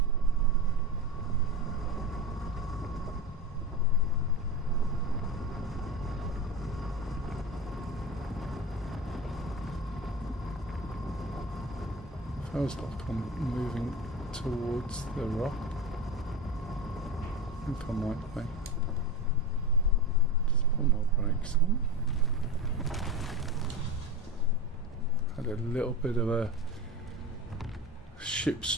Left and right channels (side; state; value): both; normal; correlation 0.24